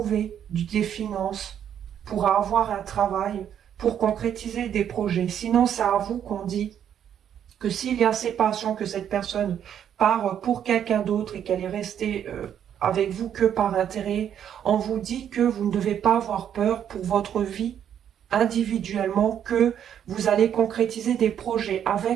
des finances, pourra avoir un travail pour concrétiser des projets. Sinon, c'est à vous qu'on dit que s'il y a séparation, que cette personne part pour quelqu'un d'autre et qu'elle est restée avec vous que par intérêt, on vous dit que vous ne devez pas avoir peur pour votre vie individuellement, que vous allez concrétiser des projets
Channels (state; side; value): quieter; left; 9.3 dB